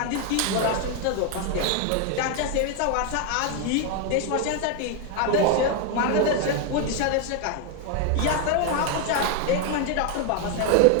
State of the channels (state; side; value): different; both; correlation 0.01